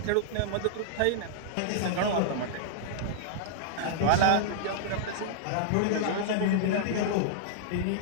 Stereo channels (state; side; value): different; both; correlation -0.01